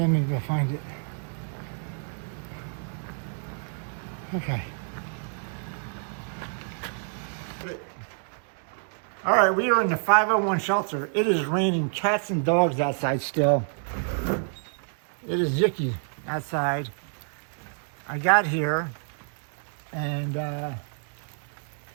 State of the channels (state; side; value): silent; left; 59 dB below the other